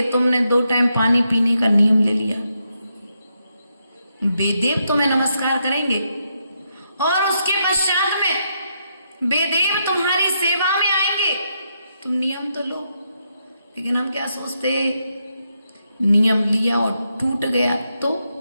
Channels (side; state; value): both; inverted; correlation -0.80